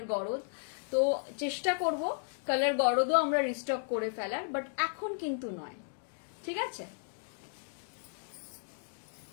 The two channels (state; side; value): silent; right; digital silence